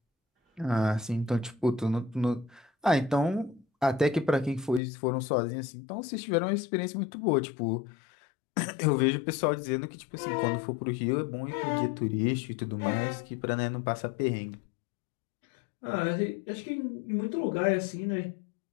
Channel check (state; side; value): drops out; right; at 4.8 s